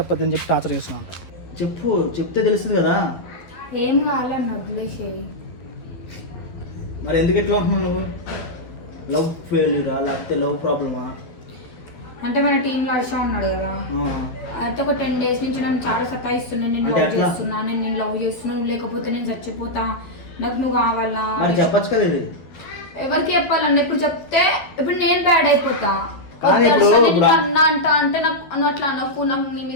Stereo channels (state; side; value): late; right; 11 ms